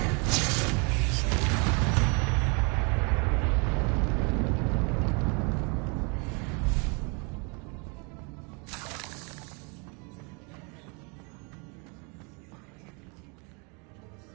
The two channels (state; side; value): quieter; left; 33.0 dB